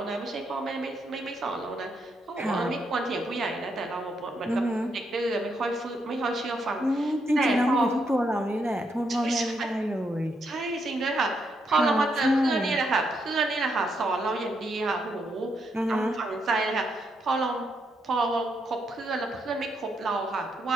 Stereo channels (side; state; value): both; normal; correlation 0.78